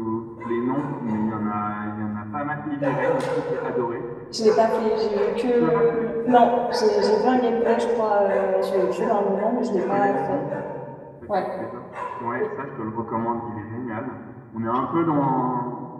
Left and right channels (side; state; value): both; identical; correlation 1.00